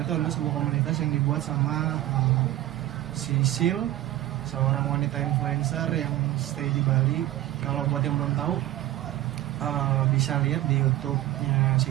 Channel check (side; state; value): left; quieter; 14.8 dB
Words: adalah sebuah komunitas yang dibuat sama Sisil, seorang wanita influencer yang stay di Bali. Kalau buat yang belum tahu, bisa lihat di YouTube-nya